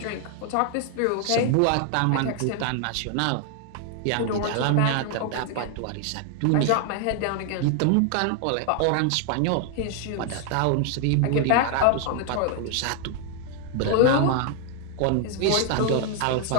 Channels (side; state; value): both; different; correlation 0.00